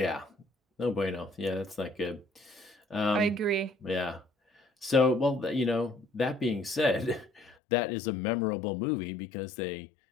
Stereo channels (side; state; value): right; drops out; at 7.6 s